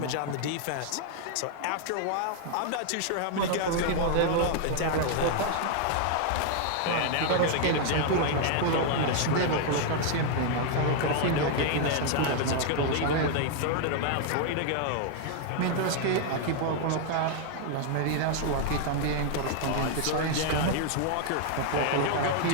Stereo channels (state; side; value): different; both; correlation 0.00